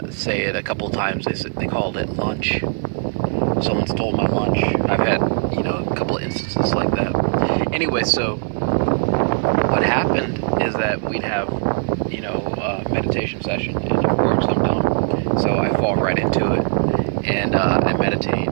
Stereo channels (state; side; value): silent; left; digital silence